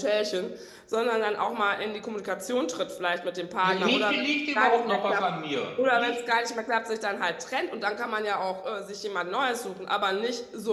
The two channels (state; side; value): identical; both; correlation 1.00